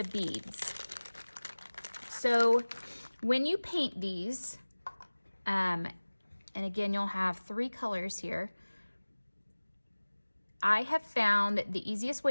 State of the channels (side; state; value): both; inverted; correlation -1.00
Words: beads. So when you paint these, and again, you'll have 3 colors here. I have found that the easiest